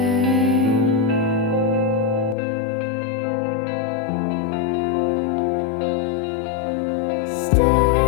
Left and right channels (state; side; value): drops out; right; at 2.4 s